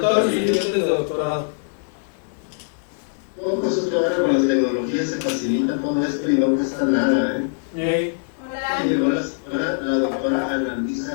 los estudiantes de doctorado. Todo eso que ahora con las tecnologías se facilita todo esto y no cuesta nada, ¿eh? Hola. Hola, la doctora Ana Luisa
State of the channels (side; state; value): right; silent; digital silence